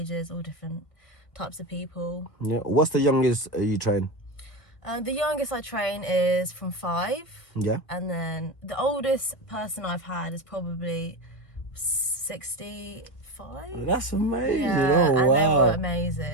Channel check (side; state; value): right; late; 1.6 ms